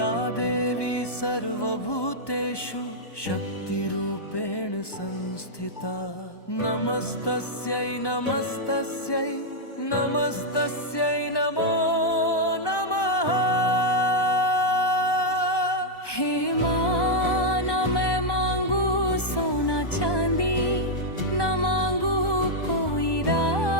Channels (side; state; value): right; late; 1.1 ms